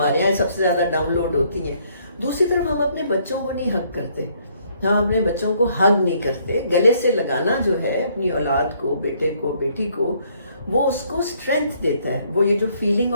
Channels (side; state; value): both; inverted; correlation -0.67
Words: یہاں سب سے زیادہ ڈاؤن لوڈ ہوتی ہیں، دوسری طرف ہم اپنے بچوں کو نہیں حق کرتے، ہم اپنے بچوں کو حق نہیں کرتے. گلے سے لگانا جو ہے اپنی اولاد کو، بیٹے کو، بیٹی کو، وہ اس کو اسٹرینتھ دیتا ہے. وہ یہ جو فیلنگ